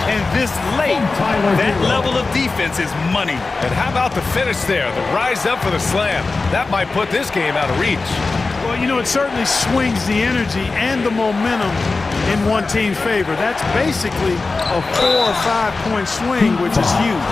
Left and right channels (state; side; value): quieter; right; 3.8 dB